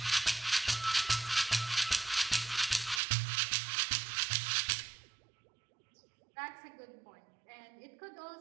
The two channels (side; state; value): left; drops out; at 3.0 s